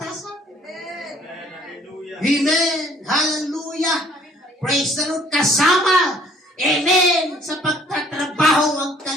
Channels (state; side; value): normal; both; correlation 0.58